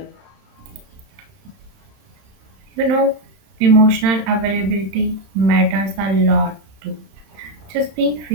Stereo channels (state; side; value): late; left; 31 ms